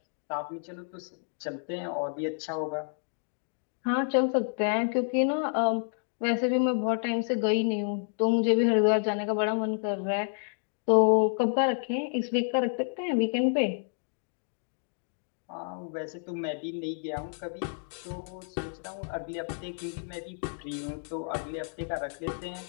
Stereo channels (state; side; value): silent; right; digital silence